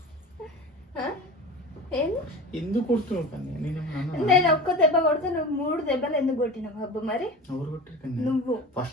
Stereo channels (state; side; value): normal; both; correlation 0.32